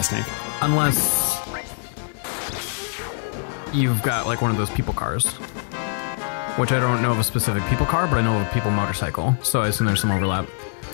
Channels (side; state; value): right; silent; 63 dB below the other